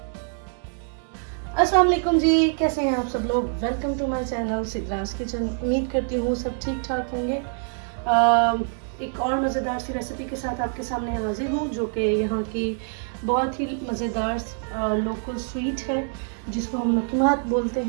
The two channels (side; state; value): left; silent; 57 dB below the other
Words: अस्सलाम वालेकुम जी, कैसे हैं आप सब लोग। Welcome to my channel Sidra's kitchen. उम्मीद करती हूँ सब ठीक ठाक होंगे। एक और मज़ेदार सी रेसिपी के साथ आपके सामने हाजिर हूँ, जो कि यहाँ की बहुत ही मज़ेदार लोकल स्वीट है, जिसको हम लकीमात बोलते